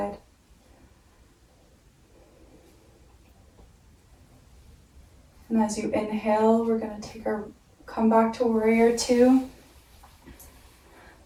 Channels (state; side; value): identical; both; correlation 1.00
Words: And as you inhale, we're going to come back to warrior two.